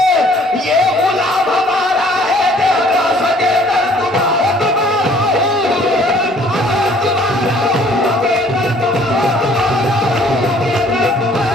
ये गुलाम हमारा है, देगा सगे दर तुम्हारा,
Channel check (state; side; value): normal; both; correlation 0.58